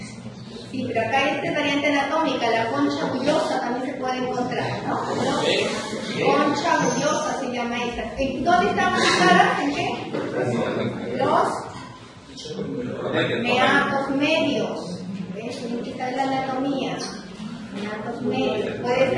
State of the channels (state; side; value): identical; both; correlation 1.00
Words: Sí, pero acá hay esta variante anatómica, la concha bullosa también se puede encontrar, ¿no? Concha bullosa se llama esa. ¿Dónde están ubicadas? ¿En qué? Los meatos medios. ¿Ves? Esta es la anatomía. Meatos medios. Puede